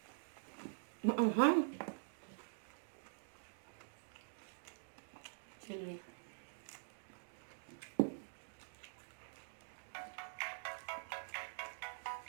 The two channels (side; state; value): left; silent; digital silence